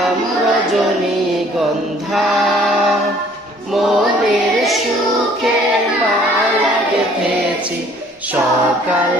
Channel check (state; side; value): normal; both; correlation 0.57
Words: রজনীগন্ধা, মনের সুখে মালা গেঁথেছি সকাল